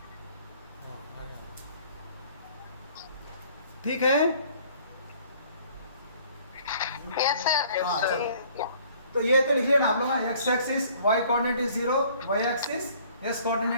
ठीक है। Yes, sir. हाँ, चलो। Yeah. तो ये तो लिख लेना आप लोग, x axis y coordinate is 0, y axis s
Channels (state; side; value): inverted; both; correlation -0.57